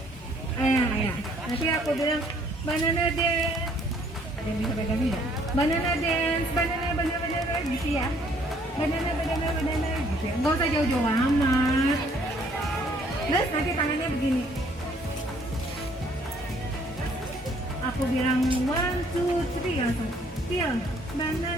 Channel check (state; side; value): normal; both; correlation 0.62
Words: Ayah. Nanti aku bilang banana dance. Ada yang bisa pegang nggak? Banana dance, banana gitu ya. Banana gitu ya. Nggak usah jauh-jauh amat. Terus nanti tangannya begini. aku bilang 1, 2, 3 langsung peel